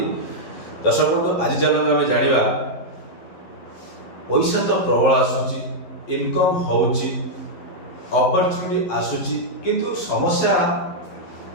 दर्शक बंधु आज चलते आम जाना पैसा तो प्रबल आसूची इनकम होची अपॉर्चुनिटी आसूची किंतु समस्या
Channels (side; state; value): right; late; 11 ms